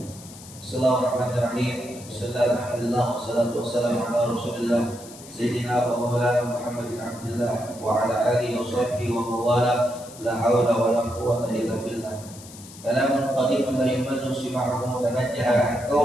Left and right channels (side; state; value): left; noise; hiss, 18 dB below the sound